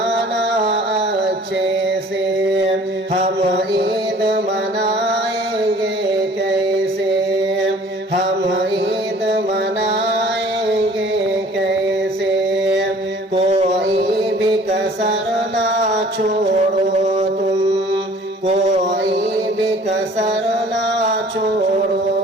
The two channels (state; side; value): normal; both; correlation 0.52